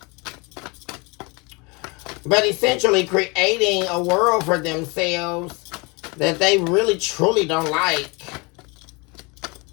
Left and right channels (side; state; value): right; quieter; 28.4 dB